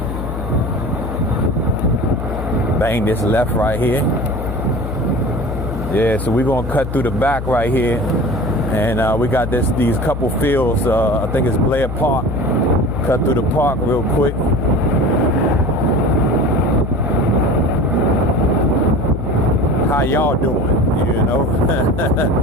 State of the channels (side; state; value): left; noise; hum, 6 dB below the sound